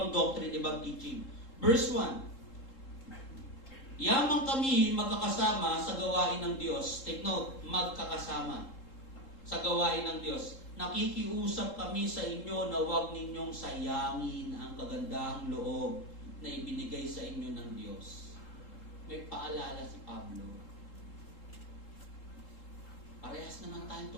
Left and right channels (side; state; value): right; late; 3.7 ms